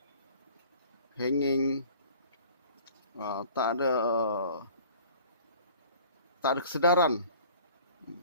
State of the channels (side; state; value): both; inverted; correlation -0.49